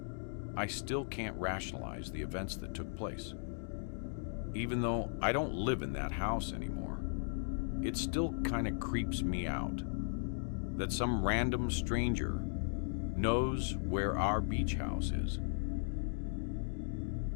I still can't rationalize the events that took place. Even though I don't live in that house anymore, it still kind of creeps me out that some random stranger knows where our beach house is.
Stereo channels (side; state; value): right; silent; digital silence